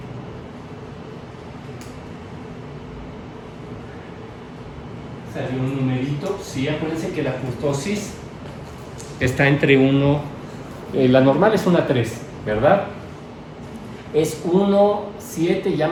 Salió un numerito. Sí, acuérdense que la kurtosis está entre 1, la normal es una 3, ¿verdad? Es 1, 7, ya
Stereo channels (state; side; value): identical; both; correlation 1.00